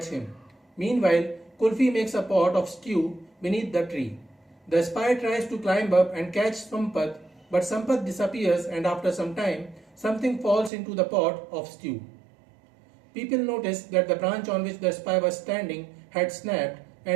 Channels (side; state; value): left; drops out; at 10.7 s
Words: him. Meanwhile, Kulfi makes a pot of stew beneath the tree. The spy tries to climb up and catch Sampath, but Sampath disappears and after some time, something falls into the pot of stew. People notice that the branch on which the spy was standing had snapped